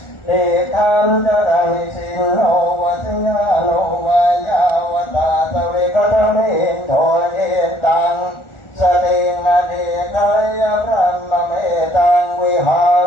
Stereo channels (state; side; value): late; right; 1.4 ms